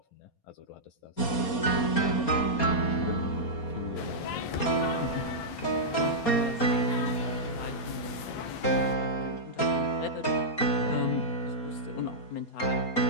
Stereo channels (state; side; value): late; right; 4.3 ms